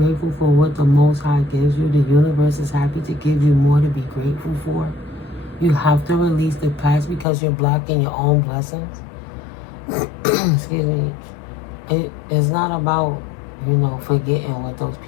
for what the Most High gives you, the universe is happy to give you more to be grateful for? You have to release the past because you're blocking your own blessings. Excuse me. It is not about, forgetting what those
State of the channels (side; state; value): right; drops out; at 7.2 s